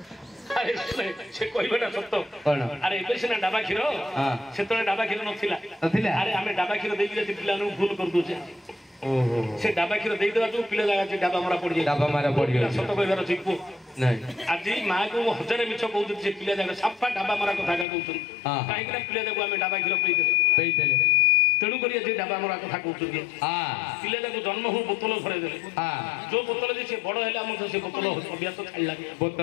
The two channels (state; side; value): drops out; right; at 17.9 s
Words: अरे से कहबाटा सत्य अरे एबे सिना डाबा କ୍ଷୀର सेतले डाबा କ୍ଷୀର नथिला अरे आमे डाबा କ୍ଷୀर देई जे पिला नु भूल कर दोचे ओहो से डाबा କ୍ଷୀर देई देबा जो पिला जागा जे डाबा मारा पड़ जाय सत्य कहबार छिपु नहीं आज माँ को 1000 मिछ कहू जे पिला जागा साफा डाबा मारा कथा का कहउछन काहे कि पिला जाको आमे डाबा କ୍ଷୀर पेई देले तेणु करी जे डाबा मारा कथा कहउछन पिला जाको जन्म हो बोतल भरे देले जो बोतल जे से बड़ हैला हम से बोतल अभ्यास छाड़ला